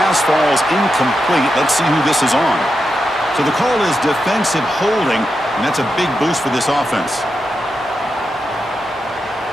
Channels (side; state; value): both; normal; correlation 0.87